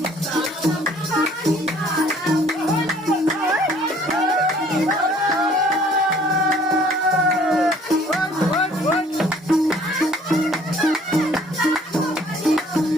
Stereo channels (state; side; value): normal; both; correlation 0.57